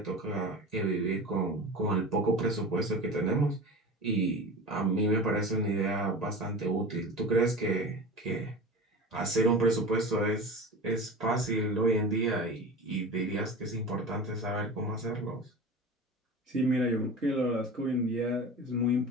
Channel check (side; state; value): both; normal; correlation 0.33